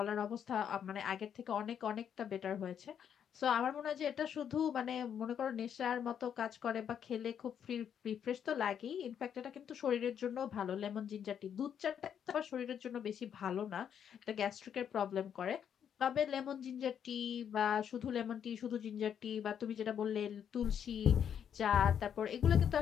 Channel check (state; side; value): quieter; right; 8.5 dB